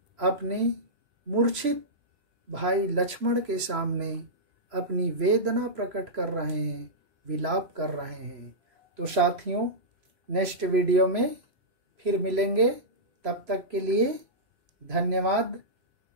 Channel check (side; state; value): left; late; 3.0 ms